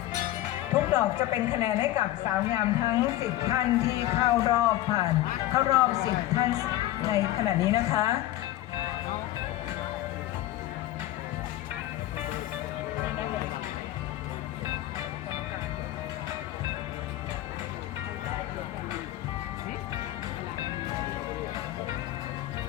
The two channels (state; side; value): quieter; right; 14.9 dB